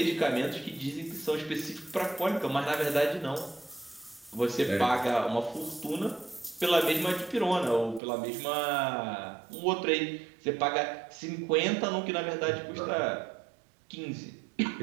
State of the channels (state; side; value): drops out; left; at 8.0 s